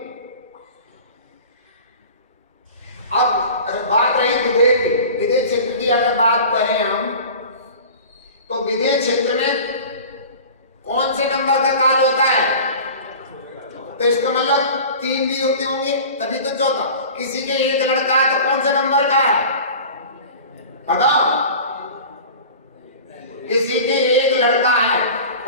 अब बात रही विदेह क्षेत्र की, अगर बात करें हम तो विदेह क्षेत्र में कौन से नंबर का काल होता है? तो इसका मतलब 3 भी होते होंगे तभी तो चौथा। किसी के एक लड़का है तो कौन से नंबर का है बताओ? किसी के एक लड़का है,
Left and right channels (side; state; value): both; inverted; correlation -0.39